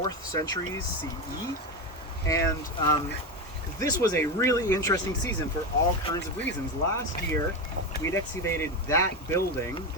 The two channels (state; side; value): normal; both; correlation 0.16